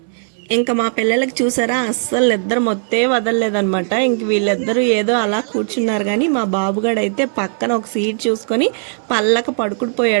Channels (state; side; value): silent; left; digital silence